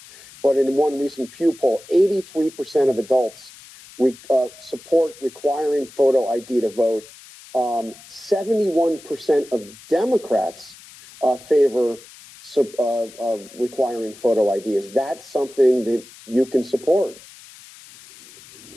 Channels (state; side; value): noise; left; hiss, 20 dB below the sound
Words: but in one recent Pew poll, 83% of adults support requiring photo ID to vote. 71% of Democrats favor requiring photo ID. Is that something that you can support?